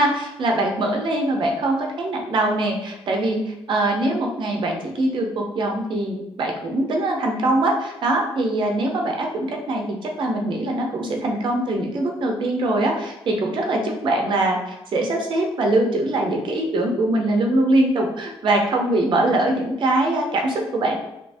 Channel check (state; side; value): normal; both; correlation 0.65